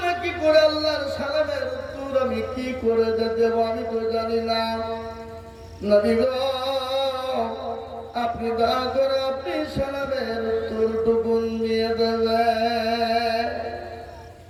আমি কি করে দেব আমি তো জানি না। নবী গো আপনি দয়া করে আপনি সালামের উত্তরটুকু দিয়ে দেবেন।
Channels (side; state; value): both; identical; correlation 1.00